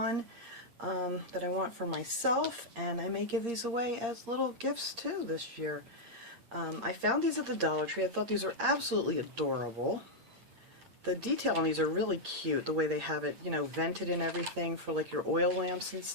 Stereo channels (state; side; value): late; left; 8.6 ms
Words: that I want for myself, and I may give these away as little gifts too this year. I found these at the Dollar Tree. I thought these were absolutely adorable. The detail on these are really cute, the way they have it, vented and everything for like your oil lamps and